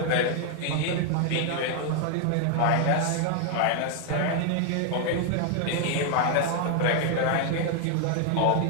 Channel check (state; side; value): different; both; correlation 0.00